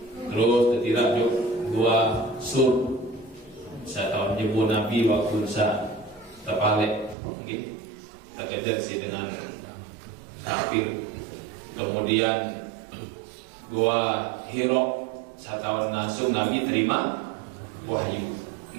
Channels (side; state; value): left; drops out; at 7.2 s